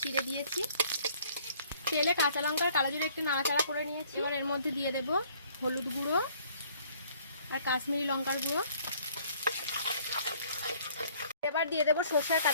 চিড়ে দিয়েছি। তেলে কাঁচা লঙ্কার কালো জিরে একটু নাড়াচাড়া করে নিয়েছি। এবার এর মধ্যে দিয়ে দেব হলুদ গুঁড়ো আর কাশ্মীরি লঙ্কার গুঁড়ো। এবার দিয়ে দেব সর্ষে আর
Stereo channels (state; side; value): inverted; both; correlation -0.59